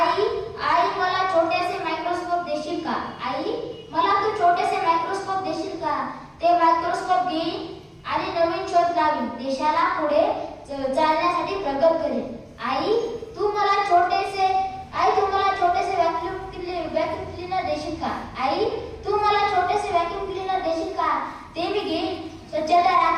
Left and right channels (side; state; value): both; identical; correlation 1.00